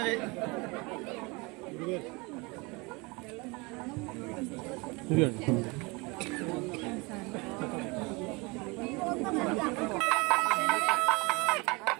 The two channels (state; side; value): quieter; left; 26.8 dB